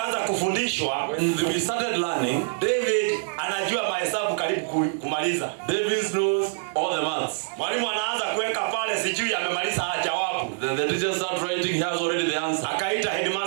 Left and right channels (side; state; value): left; silent; digital silence